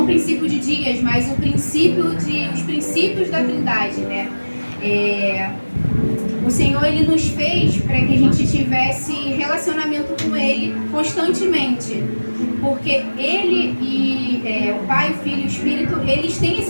o princípio de dias, mas os princípios da Trindade, né? O Senhor ele nos fez para que a gente tivesse relacionamento com Ele constantemente, porque Ele e o Pai, o Filho e o Espírito, eles têm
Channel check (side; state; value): both; inverted; correlation -1.00